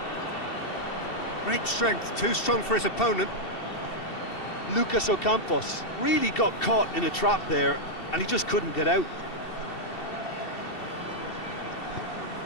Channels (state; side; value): late; right; 2.7 ms